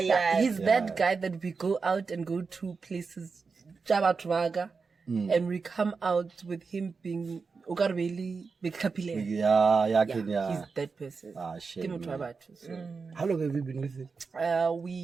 He's that guy that we go out and go to places, Jabatwaga, and we come out with him being Ukarbeli Bekapile. Yeah. He's that person. Shame. So. How long have you been with him?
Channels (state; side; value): quieter; left; 4.8 dB